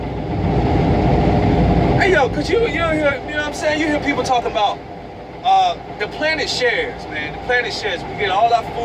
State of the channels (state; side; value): identical; both; correlation 1.00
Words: Hey yo, cause you hear, you know what I'm saying? You hear people talking about the planet shares, man. The planet shares. We get all our